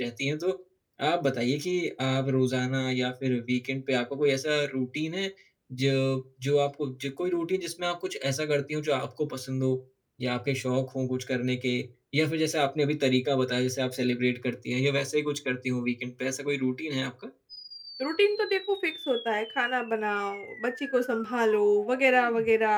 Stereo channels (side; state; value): both; identical; correlation 1.00